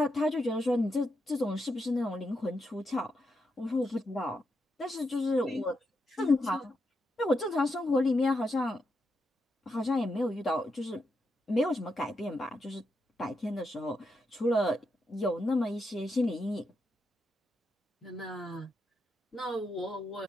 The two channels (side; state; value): both; normal; correlation 0.84